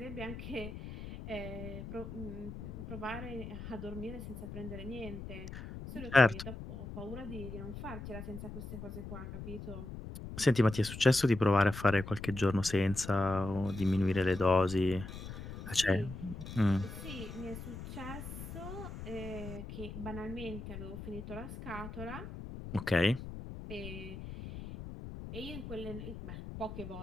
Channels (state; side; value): noise; left; rumble, 10 dB below the sound